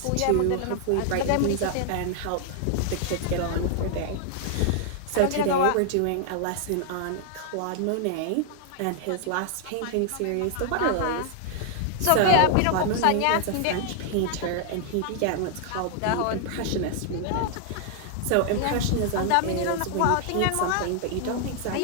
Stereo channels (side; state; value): both; different; correlation 0.00